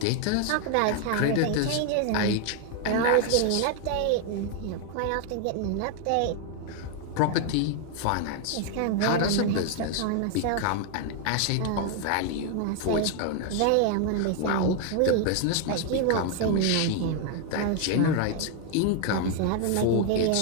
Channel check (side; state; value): both; different; correlation 0.00